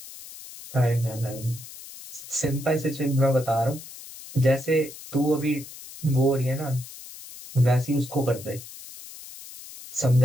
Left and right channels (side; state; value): left; noise; hiss, 15 dB below the sound